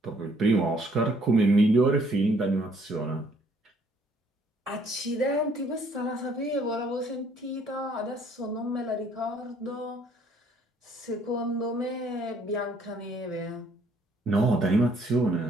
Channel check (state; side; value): normal; both; correlation 0.63